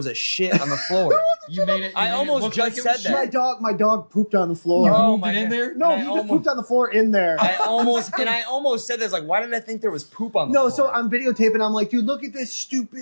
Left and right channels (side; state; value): both; inverted; correlation -1.00